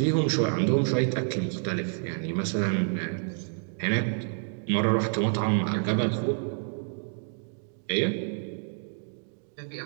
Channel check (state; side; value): silent; left; 57 dB below the other